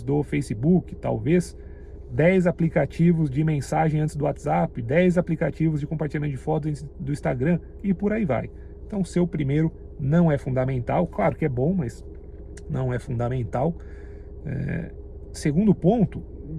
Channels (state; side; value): identical; both; correlation 1.00